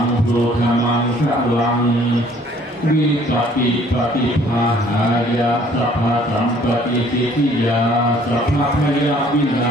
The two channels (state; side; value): normal; both; correlation 0.58